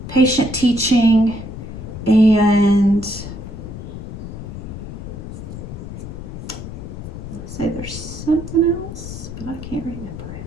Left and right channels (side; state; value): left; noise; rumble, 9 dB below the sound